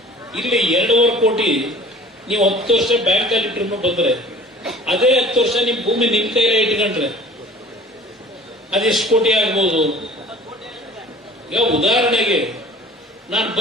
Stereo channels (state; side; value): normal; both; correlation 0.46